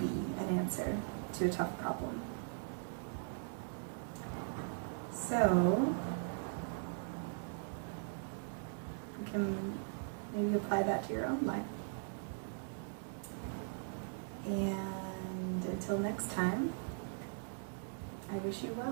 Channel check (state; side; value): silent; left; digital silence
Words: an answer to a tough problem. So you can maybe apply that to your own life. And until next time, I wish you